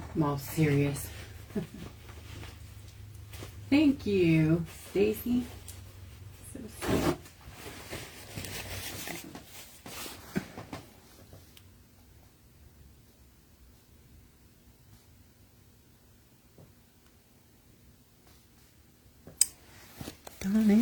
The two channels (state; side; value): identical; both; correlation 1.00